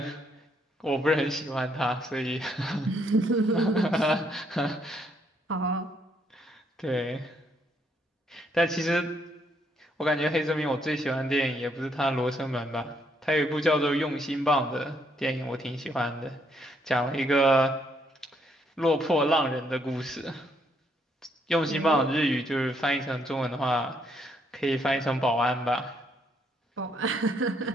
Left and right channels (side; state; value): both; normal; correlation 0.72